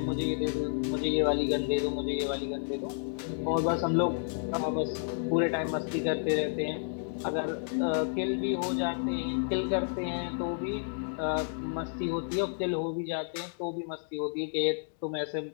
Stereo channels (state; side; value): silent; right; digital silence